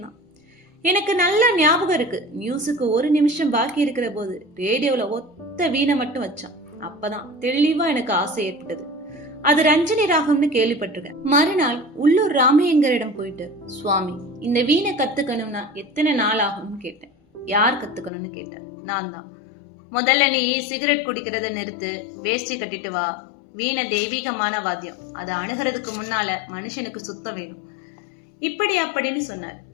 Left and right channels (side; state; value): right; drops out; at 18.1 s